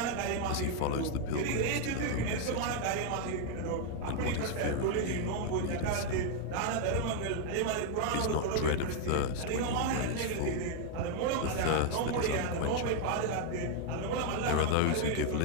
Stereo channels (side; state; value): both; different; correlation 0.00